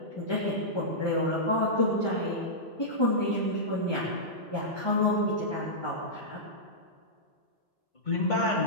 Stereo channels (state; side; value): normal; both; correlation -0.13